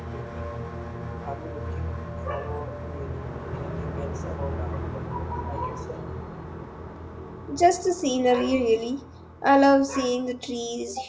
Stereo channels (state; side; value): identical; both; correlation 1.00